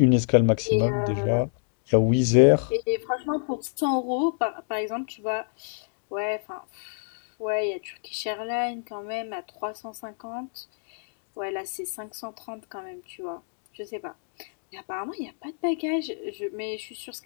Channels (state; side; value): silent; right; digital silence